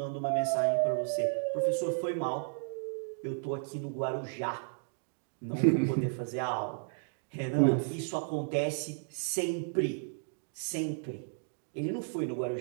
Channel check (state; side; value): silent; left; digital silence